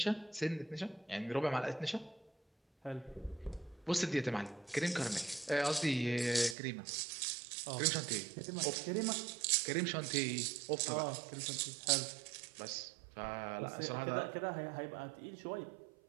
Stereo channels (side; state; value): left; drops out; at 6.6 s